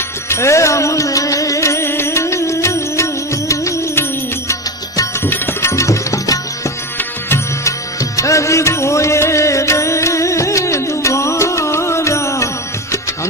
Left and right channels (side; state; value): both; normal; correlation 0.19